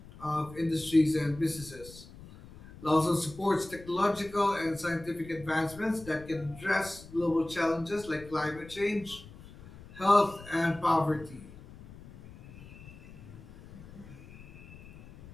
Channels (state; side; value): noise; left; rumble, 18 dB below the sound